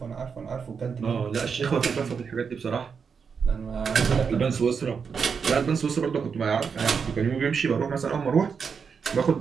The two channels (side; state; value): left; quieter; 6.1 dB